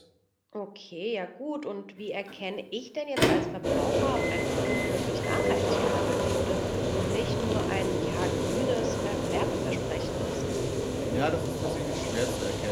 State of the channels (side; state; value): both; identical; correlation 1.00